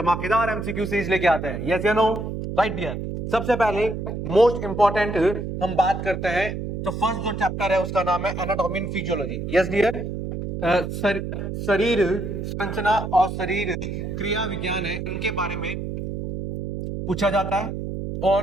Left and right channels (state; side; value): noise; right; hum, 5 dB below the sound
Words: एमसीक्यू सीरीज लेके आते हैं। यस या नो? Right dear. सबसे पहले मोस्ट इंपॉर्टेंट हम बात करते हैं, तो फर्स्ट जो चैप्टर है उसका नाम है anatomy and physiology. Yes dear. शरीर संरचना और शरीर क्रिया विज्ञान है, इनके बारे में पूछा जाता है।